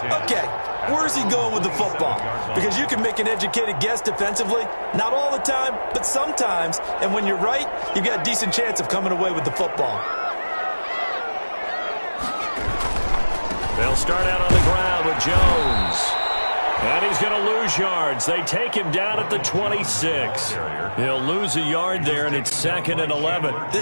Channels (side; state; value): both; inverted; correlation -1.00